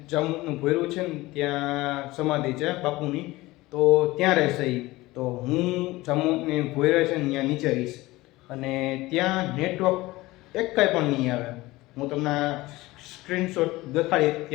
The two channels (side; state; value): right; quieter; 19.5 dB